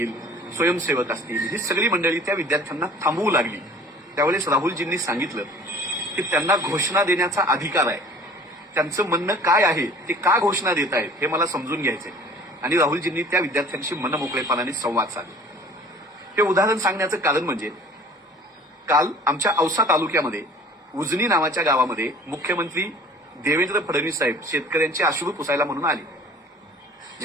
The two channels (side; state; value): both; normal; correlation 0.47